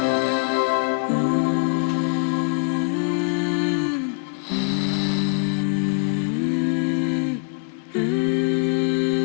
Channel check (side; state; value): right; quieter; 38.7 dB